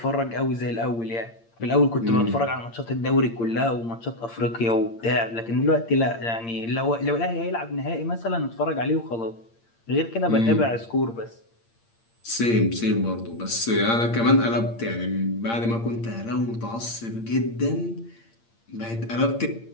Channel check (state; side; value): late; right; 8.7 ms